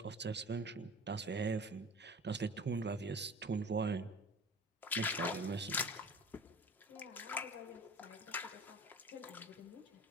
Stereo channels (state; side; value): normal; both; correlation 0.39